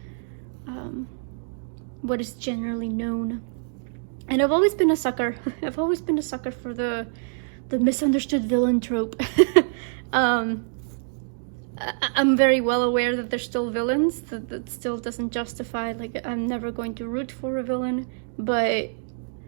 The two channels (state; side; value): silent; left; digital silence